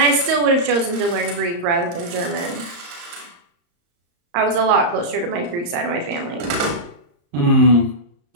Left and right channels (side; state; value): left; late; 34 ms